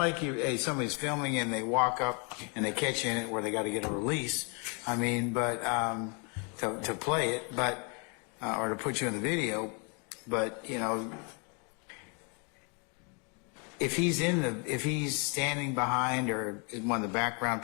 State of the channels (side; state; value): right; quieter; 35.9 dB